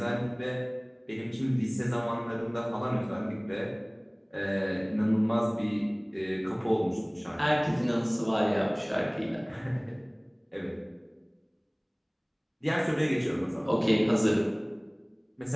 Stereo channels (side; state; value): both; identical; correlation 1.00